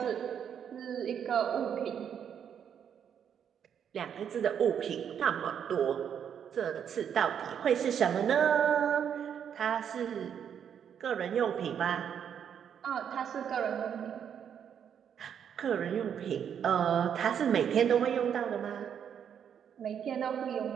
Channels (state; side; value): quieter; left; 8.3 dB